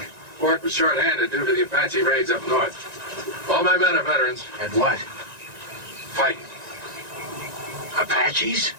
Fort was short-handed due to the Apache raids up north. All my men are veterans. And what? Fighting. Apaches?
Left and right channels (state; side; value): late; left; 1.9 ms